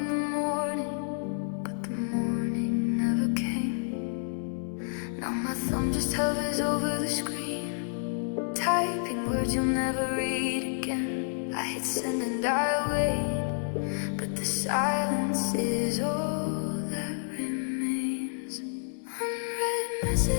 the morning, but the morning never came. Now my thumb just hovers over the screen, typing words you'll never read again. I hit send and I wait, but the silence is all that remains. Unread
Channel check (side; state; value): right; silent; 58 dB below the other